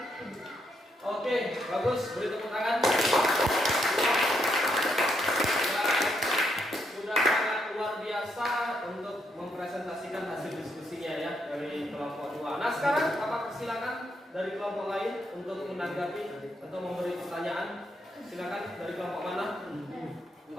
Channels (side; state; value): both; normal; correlation 0.77